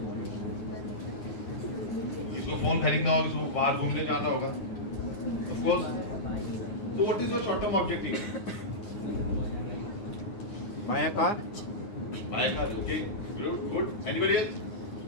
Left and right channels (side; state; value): right; late; 9.6 ms